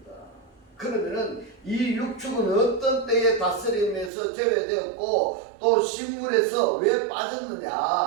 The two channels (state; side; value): drops out; left; at 4.1 s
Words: 그러면은 이 육축은 어떤 때에 다스림에서 제외되었고 또 식물에서 왜